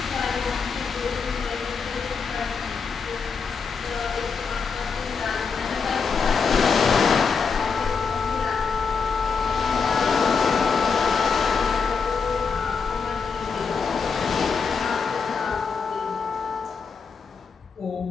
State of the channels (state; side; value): quieter; right; 5.5 dB